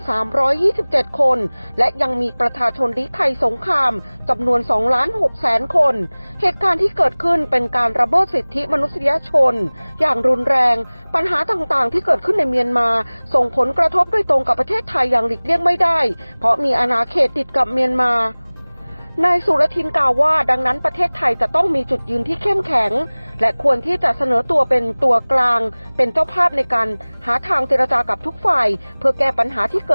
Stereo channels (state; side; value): inverted; both; correlation -1.00